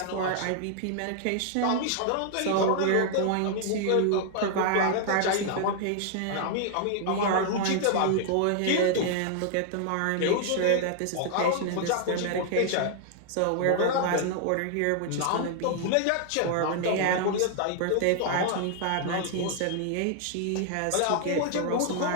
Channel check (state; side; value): different; both; correlation 0.00